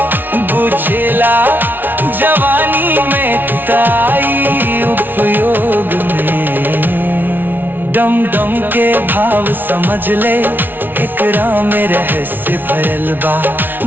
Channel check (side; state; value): left; late; 0.091 ms